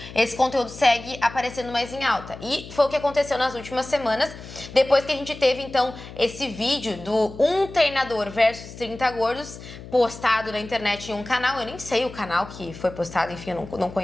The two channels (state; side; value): noise; left; hum, 15 dB below the sound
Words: esse conteúdo segue aparecendo mais em alta. E foi o que aconteceu nas últimas semanas, depois que a gente teve, então, esse vídeo do um treinador versus 30 gordos postado na internet em um canal. Eu nem sei o canal que foi postado, enfim, eu não